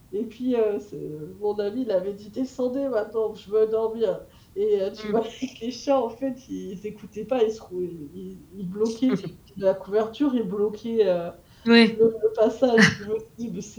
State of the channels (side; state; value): both; identical; correlation 1.00